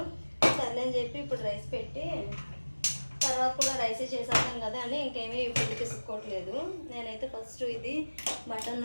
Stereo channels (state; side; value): inverted; both; correlation -1.00